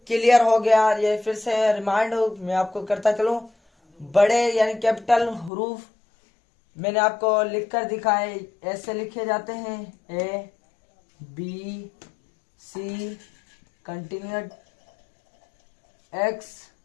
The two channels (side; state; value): right; drops out; at 5.5 s